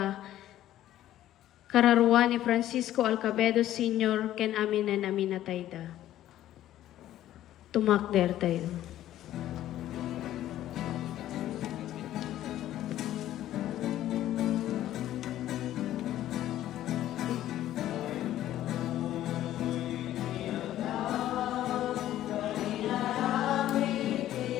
kararwa ni Francisco Alcabedo Sr., ken amin na namin natayda. Tumakder tayo.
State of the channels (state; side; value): quieter; right; 13.0 dB